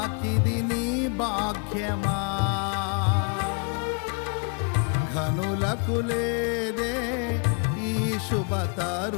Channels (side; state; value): right; quieter; 37.7 dB